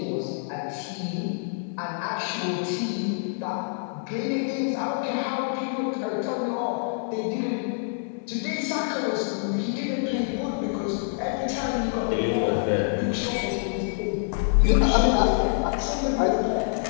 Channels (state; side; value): silent; right; digital silence